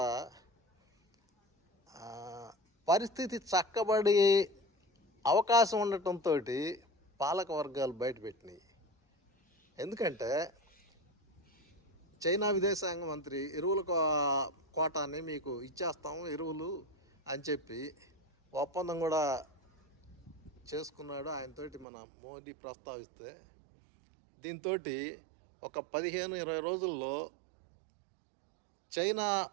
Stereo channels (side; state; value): left; drops out; at 21.9 s